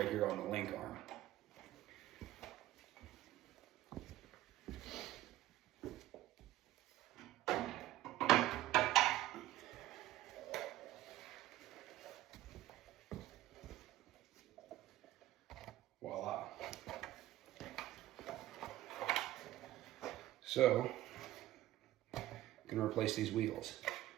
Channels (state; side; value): quieter; left; 15.1 dB